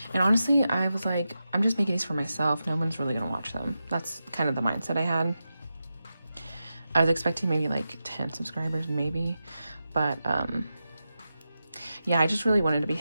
And honestly, I was like, I'm just making these for myself. No one's really gonna watch them. That's kind of the mindset I had. I was expecting maybe like 10 subscribers, maybe. But yeah, I just really wanted to be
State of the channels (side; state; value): both; inverted; correlation -0.90